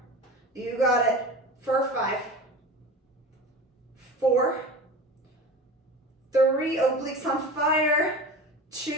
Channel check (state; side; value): normal; both; correlation 0.33